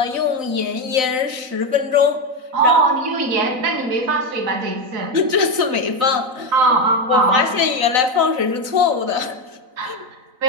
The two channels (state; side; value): late; left; 4.0 ms